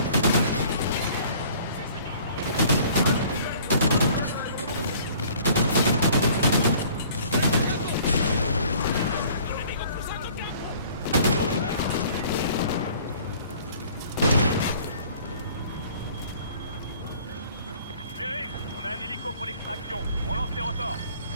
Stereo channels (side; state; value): both; inverted; correlation -0.53